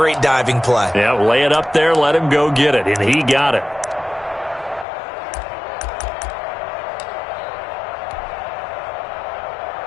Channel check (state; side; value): drops out; right; at 4.9 s